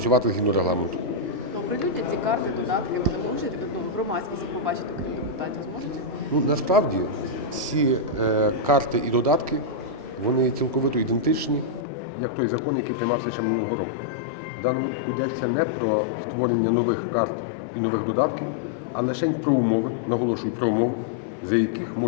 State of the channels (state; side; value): drops out; right; at 11.9 s